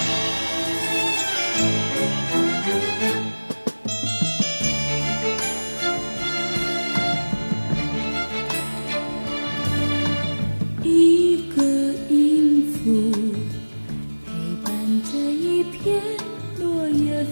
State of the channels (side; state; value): both; inverted; correlation -1.00